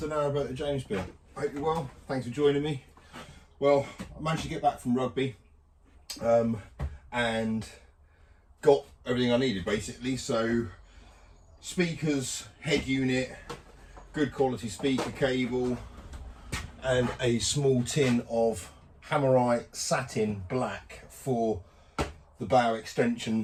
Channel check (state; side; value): identical; both; correlation 1.00